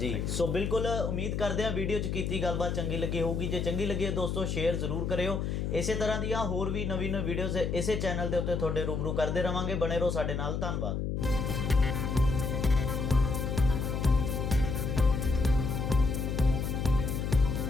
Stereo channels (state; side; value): noise; left; hum, 1 dB below the sound